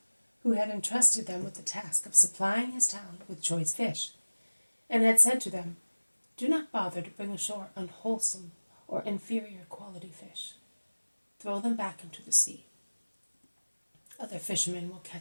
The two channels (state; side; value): inverted; both; correlation -1.00